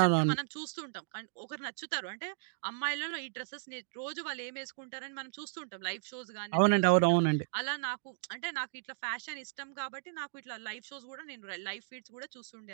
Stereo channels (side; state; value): left; silent; digital silence